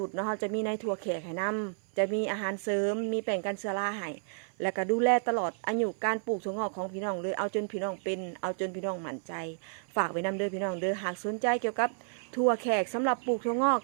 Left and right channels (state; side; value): silent; left; 57 dB below the other